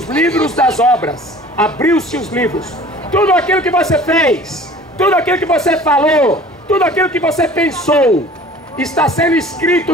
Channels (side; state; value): both; normal; correlation 0.46